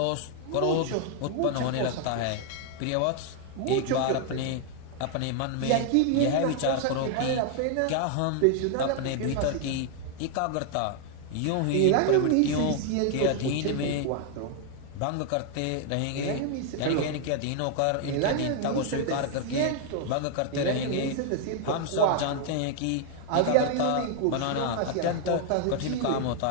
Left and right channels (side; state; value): both; different; correlation 0.00